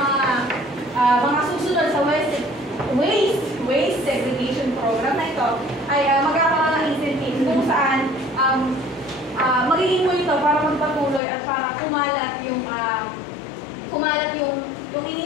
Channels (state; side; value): drops out; right; at 11.2 s